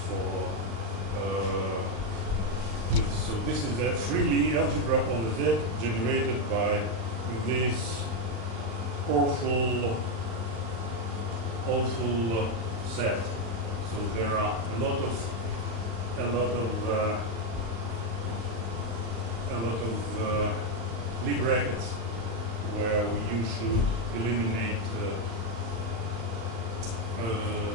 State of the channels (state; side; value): late; left; 35 ms